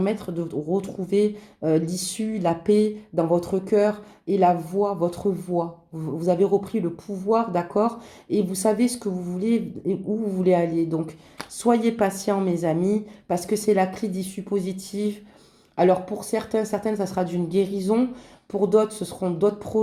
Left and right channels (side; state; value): both; identical; correlation 1.00